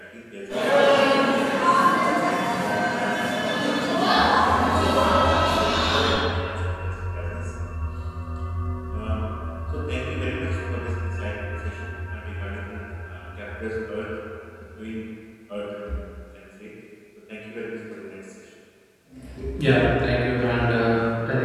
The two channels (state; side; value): identical; both; correlation 1.00